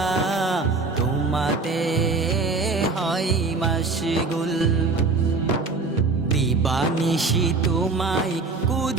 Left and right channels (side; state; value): left; quieter; 3.9 dB